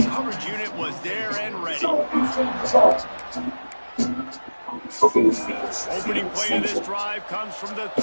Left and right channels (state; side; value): inverted; both; correlation -1.00